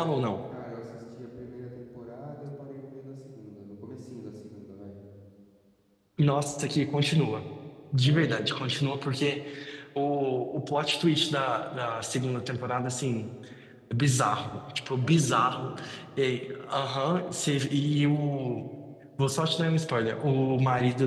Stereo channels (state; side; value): identical; both; correlation 1.00